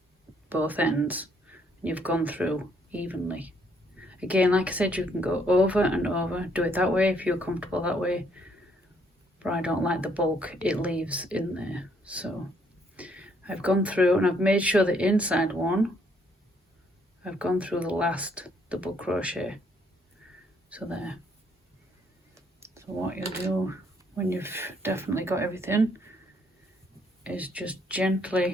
both ends. You've gone through evenly. Again, like I said, you can go over and over. Do it that way if you're comfortable that way. But I don't like the bulk it leaves in there. So I've gone through and I've made sure the inside one, I've gone through the last double crochet. So there. So what you'll do when you've definitely got everything is just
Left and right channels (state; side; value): normal; both; correlation 0.68